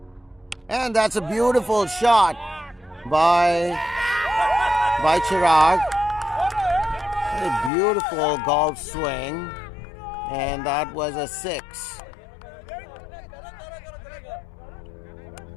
And that's a beautiful shot by Chirag. A beautiful golf swing. And that was a 6.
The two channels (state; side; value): drops out; right; at 7.7 s